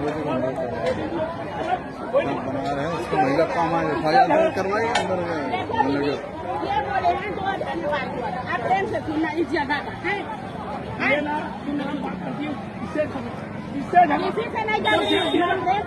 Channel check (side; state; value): both; identical; correlation 1.00